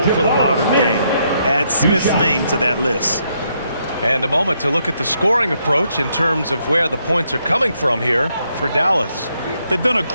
for the modern game, add Smith's name to that list. And a moment to look at the scoring approach in terms of where the points are coming from here for Dallas. They've done a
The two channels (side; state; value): both; inverted; correlation -0.75